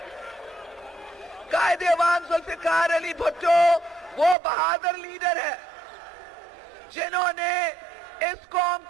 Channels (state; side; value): drops out; left; at 4.4 s